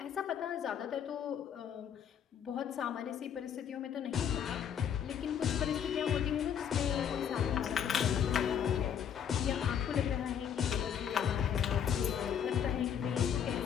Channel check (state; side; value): quieter; right; 8.4 dB